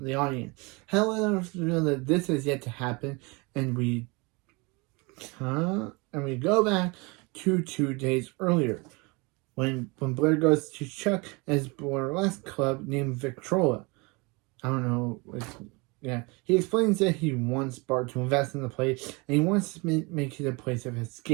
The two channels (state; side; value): quieter; left; 27.8 dB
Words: the audience. However, we know that this is yet to happen, and we go back to 2 days earlier when Blair goes to Chuck at his burlesque club named Victrola. I don't know. He explains that he wants Bart to invest in the place, and he wants to make it a place of